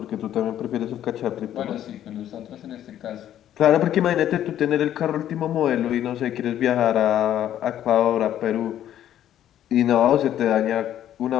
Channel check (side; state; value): right; quieter; 11.3 dB